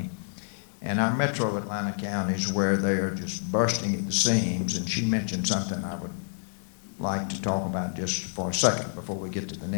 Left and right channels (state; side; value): silent; right; digital silence